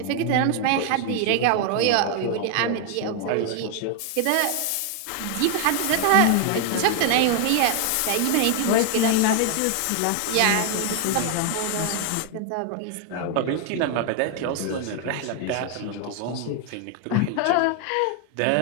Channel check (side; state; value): both; different; correlation 0.00